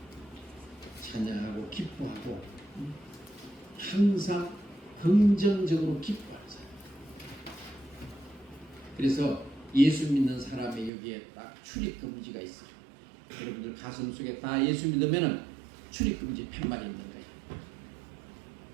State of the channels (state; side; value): drops out; left; at 10.9 s